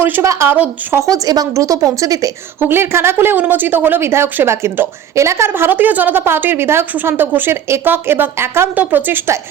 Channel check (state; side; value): quieter; left; 9.5 dB